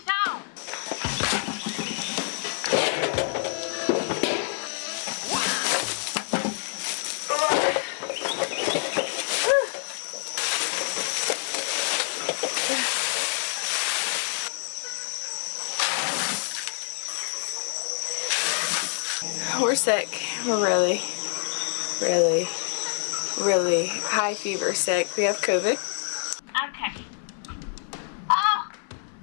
on? We're sick. We're really, really, really high fever sick. We have COVID. Okay. Oh,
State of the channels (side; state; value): right; silent; 60 dB below the other